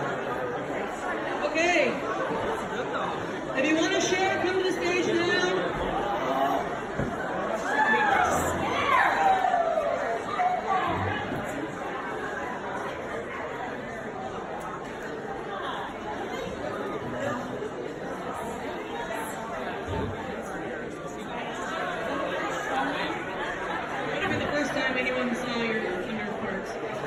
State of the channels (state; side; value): identical; both; correlation 1.00